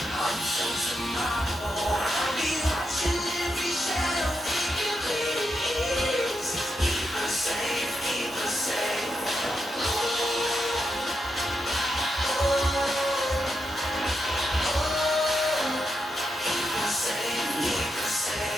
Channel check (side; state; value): both; normal; correlation 0.85